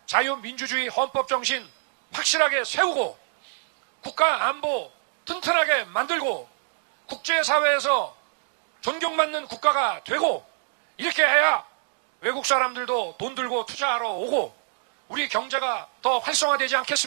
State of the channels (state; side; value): silent; left; digital silence